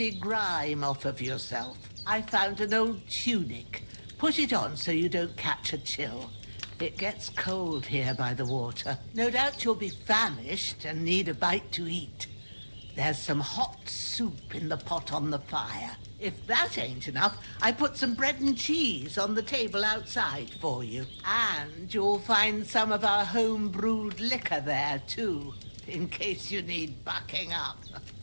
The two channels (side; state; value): both; inverted; correlation -1.00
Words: grime off of yourself. I found an old tunic. Put it on so you don't catch a chill. It gets cold here by the water. No doubt you'll be famished and need a bite to eat. There's some hot soup in the pot on the fire. If that ain't enough, I put some bread and cheese on the table outside for you. And you'll find some of our home-brewed liquor there, too, in case you need bucking up.